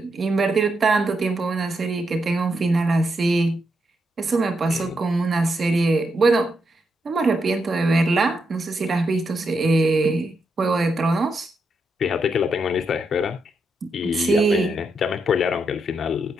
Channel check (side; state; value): both; normal; correlation 0.82